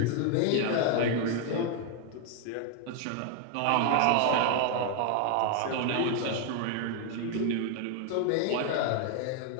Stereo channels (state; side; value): different; both; correlation 0.00